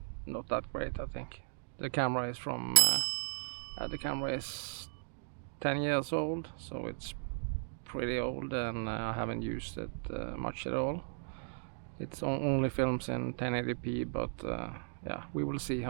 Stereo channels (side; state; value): left; silent; digital silence